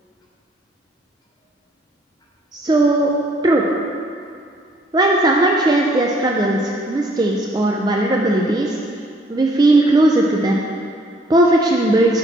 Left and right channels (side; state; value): both; normal; correlation 0.62